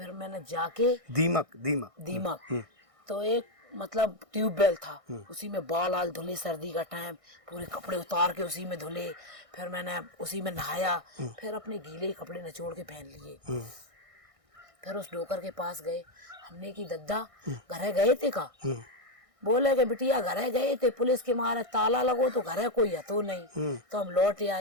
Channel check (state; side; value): late; left; 1.6 ms